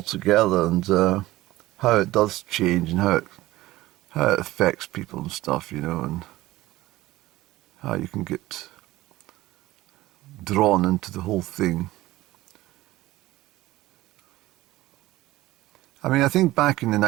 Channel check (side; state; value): left; quieter; 17.4 dB